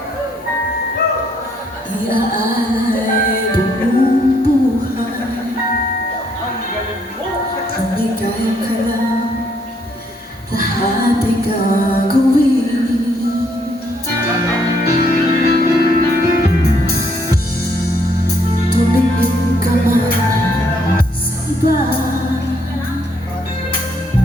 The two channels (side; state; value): both; normal; correlation 0.70